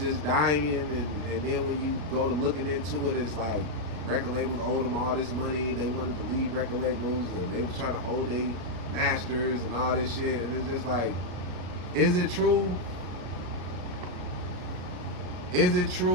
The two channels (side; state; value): left; late; 33 ms